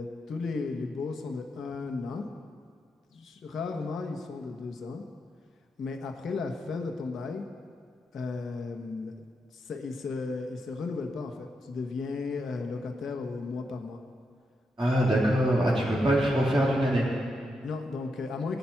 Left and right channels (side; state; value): both; normal; correlation 0.84